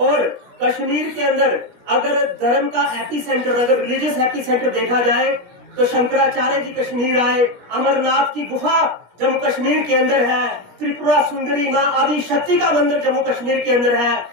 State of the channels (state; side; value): late; left; 17 ms